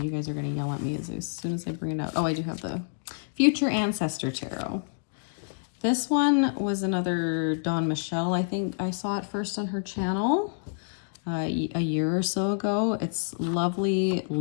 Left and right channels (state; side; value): silent; right; digital silence